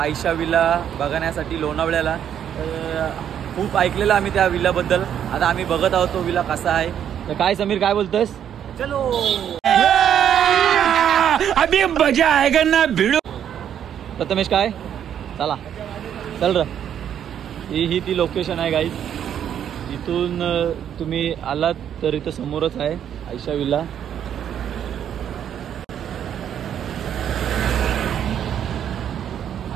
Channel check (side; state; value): left; quieter; 9.4 dB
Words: विला बघण्यासाठी लोणावळ्याला। तर खूप ऐकलेलं आम्ही त्या विलाबद्दल। आता आम्ही बघत आहोत तो विला कसा आहे। तर काय समीर काय बोलतोस? चलो अभी मजा आएगा ना भिड़ो। प्रथमेश काय चला चल र। ही ती लोकेशन आहे गाईज। इथून तुम्ही आलात तर इथं समोरच आहे आयशा विला।